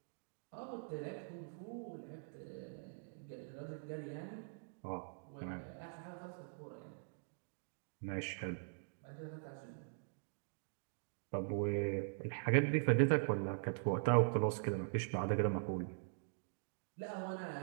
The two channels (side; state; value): left; silent; digital silence